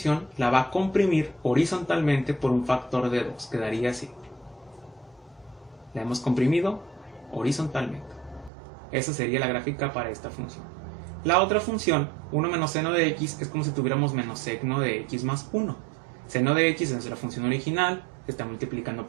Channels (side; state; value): left; drops out; at 8.5 s